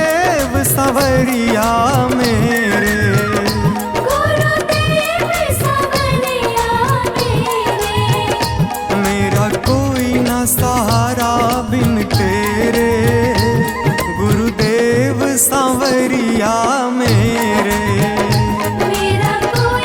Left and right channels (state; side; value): identical; both; correlation 1.00